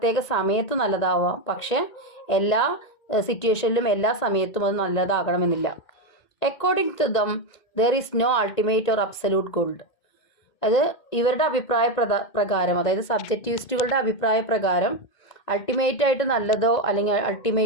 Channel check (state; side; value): late; right; 2.1 ms